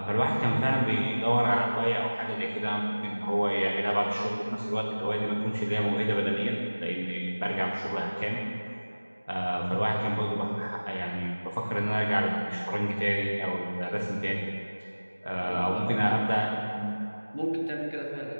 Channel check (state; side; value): inverted; both; correlation -1.00